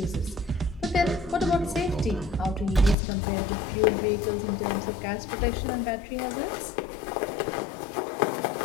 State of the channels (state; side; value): drops out; right; at 3.0 s